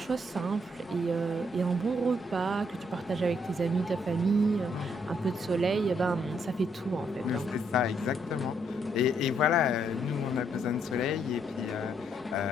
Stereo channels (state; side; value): normal; both; correlation 0.73